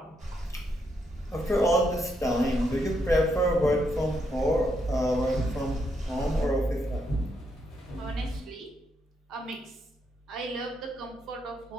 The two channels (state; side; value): normal; both; correlation 0.78